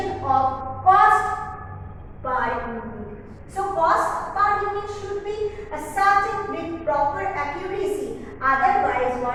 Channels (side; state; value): both; identical; correlation 1.00